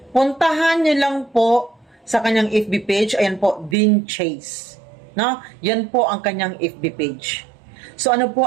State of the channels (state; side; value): drops out; left; at 3.8 s